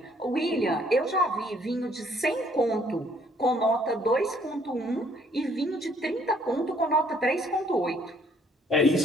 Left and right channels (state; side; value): normal; both; correlation 0.63